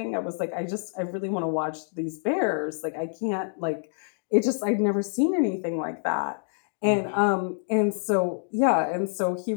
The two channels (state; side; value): silent; right; digital silence